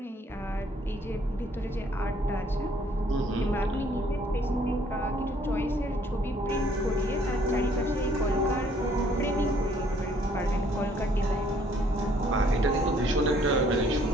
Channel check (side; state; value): both; normal; correlation 0.63